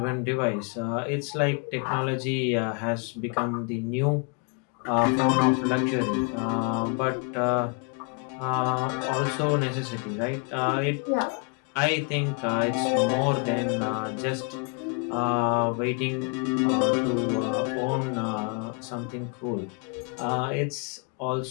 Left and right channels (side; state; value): right; quieter; 36.8 dB